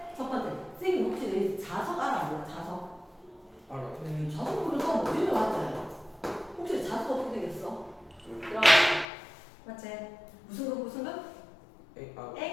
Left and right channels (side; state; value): right; drops out; at 9.1 s